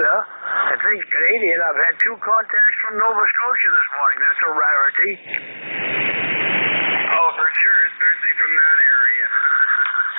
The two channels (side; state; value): both; inverted; correlation -1.00